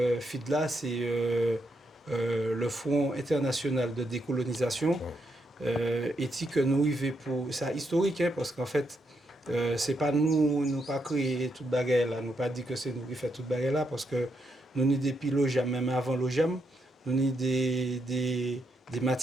FIDLA, c'est le Front international de décolonisation. Et que nous arrivons pour ça historique, hein, parce qu'en fait, c'est pas nous pas créé toute bagarre là, nous pas dit que c'est nous qui fait toute bagarre là, parce que nous ni depuis l'OJAM, même avant l'OJAM, nous ni des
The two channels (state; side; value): normal; both; correlation 0.80